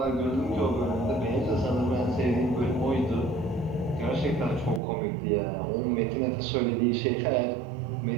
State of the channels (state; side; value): drops out; left; at 4.8 s